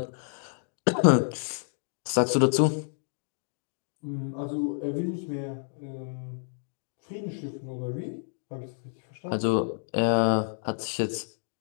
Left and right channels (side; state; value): right; silent; digital silence